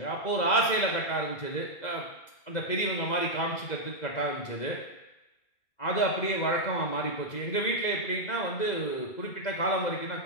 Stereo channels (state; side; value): late; right; 2.0 ms